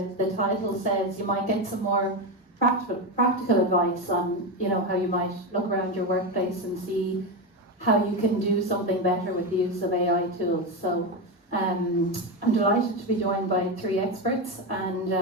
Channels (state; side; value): normal; both; correlation 0.14